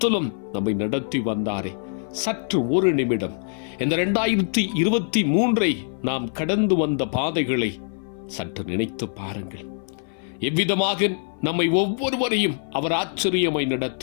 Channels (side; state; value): right; silent; 56 dB below the other